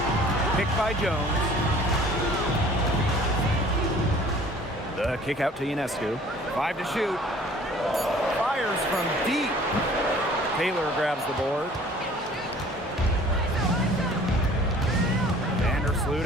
Picked by Jones. The kick out to Ionescu. 5 to shoot. Fires from deep. Taylor grabs the board. Vandersloot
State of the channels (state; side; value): normal; both; correlation 0.51